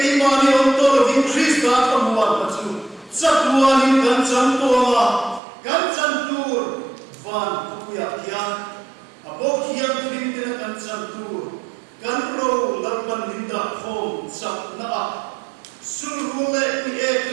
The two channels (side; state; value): left; drops out; at 5.4 s